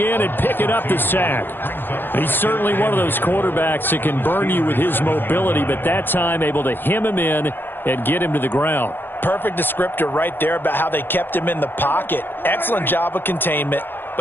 and picking up the sack. He's certainly one of those quarterbacks that can burn you with his mobility, but that time able to hem him in and get him to the ground. Perfect descriptor right there about how they kept him in the pocket. Excellent job of containment.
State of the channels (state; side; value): late; right; 0.097 ms